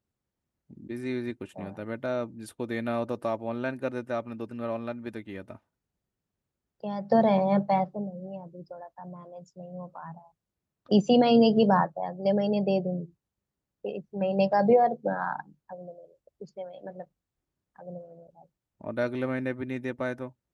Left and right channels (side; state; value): both; identical; correlation 1.00